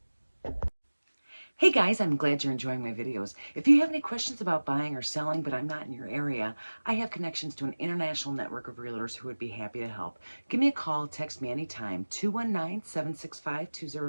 Hey guys, I'm glad you're enjoying my videos. If you have any questions about buying or selling, but I'm not in your area, I have connections to an international network of realtors who would be happy to help. Give me a call, text me anytime,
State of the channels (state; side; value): inverted; both; correlation -1.00